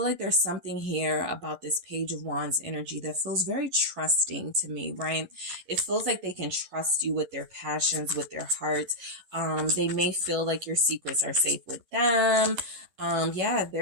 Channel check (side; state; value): left; late; 11 ms